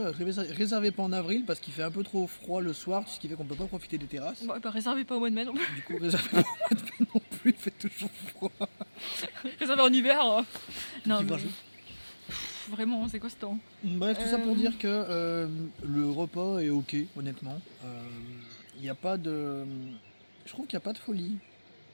pas en avril parce qu'il fait un peu trop froid le soir, ce qui fait qu'on peut pas profiter des terrasses. Bon, bah réservez pas au mois de mai non plus. Du coup, réservez pas au mois de mai non plus, il fait toujours froid. Réservez en hiver. Non, Petit mais... grageau. Vraiment, c'est quoi ce temps? Bref, tout ça pour dire que le repas est ok, honnêtement. Il n'y a pas de... Je trouve qu'il n'y a pas de folie.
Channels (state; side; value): inverted; both; correlation -1.00